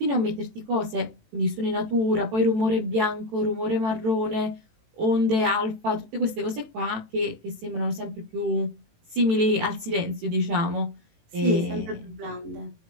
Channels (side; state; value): left; late; 18 ms